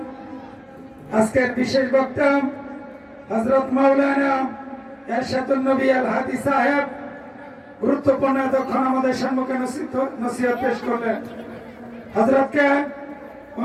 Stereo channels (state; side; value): identical; both; correlation 1.00